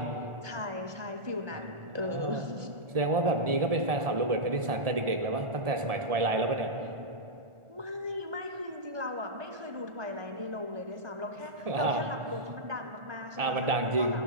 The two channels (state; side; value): late; left; 1.4 ms